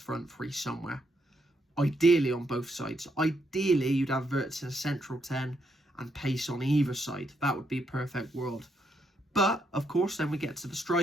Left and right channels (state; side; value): normal; both; correlation 0.78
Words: three somewhere. Ideally on both sides. Ideally you'd have Wirtz in a central 10 and pace on either side. That would be a perfect world. But of course then we get to the